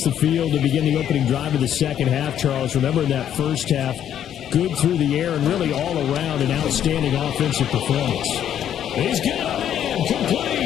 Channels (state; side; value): quieter; right; 10.1 dB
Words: the field to begin the opening drive of the second half, Charles, remember in that first half, good through the air and really all around an outstanding offensive performance. He's got a man